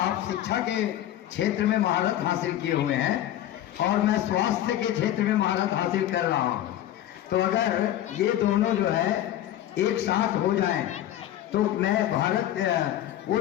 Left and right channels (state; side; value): quieter; right; 12.6 dB